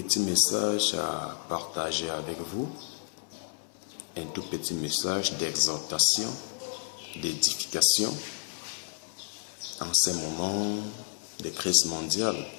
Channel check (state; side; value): silent; right; 57 dB below the other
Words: message à partager avec vous. Un tout petit message d'exhortation, d'édification en ces moments de crise mondiale.